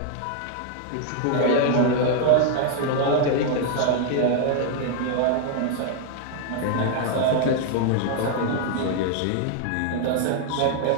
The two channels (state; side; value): different; both; correlation 0.00